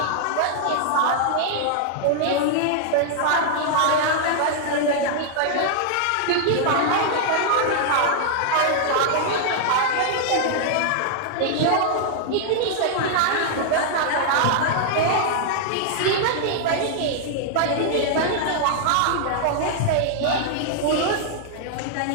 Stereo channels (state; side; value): different; both; correlation -0.01